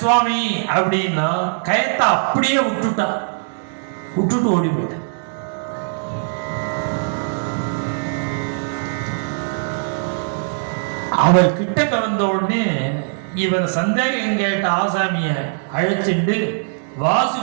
சுவாமி அப்படின்னா கயத்தை அப்படியே விட்டுட்டு ஓடி போயிட்ட. அவர் கிட்டக்க வந்த உடனே இவர் சந்தேகம் கேட்ட ஆசாமிய அழைச்சிண்டு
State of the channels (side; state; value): left; silent; digital silence